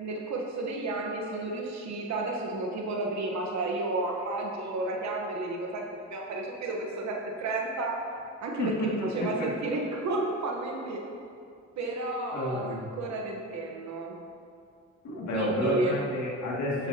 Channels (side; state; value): both; normal; correlation 0.18